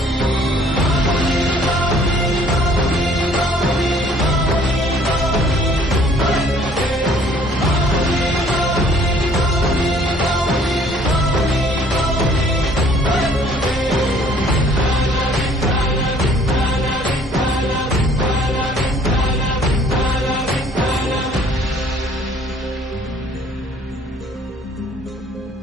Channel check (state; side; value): normal; both; correlation 0.58